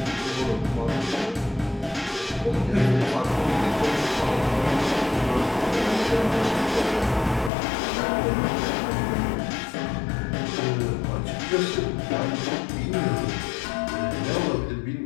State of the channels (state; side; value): drops out; right; at 7.5 s